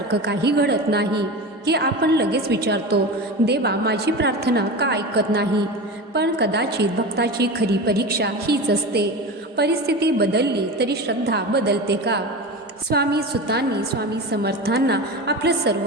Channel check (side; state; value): both; normal; correlation 0.27